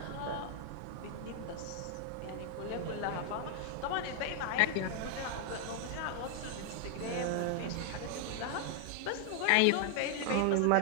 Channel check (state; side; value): different; both; correlation 0.00